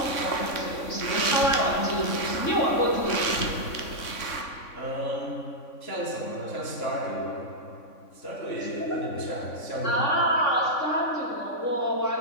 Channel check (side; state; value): right; late; 3.5 ms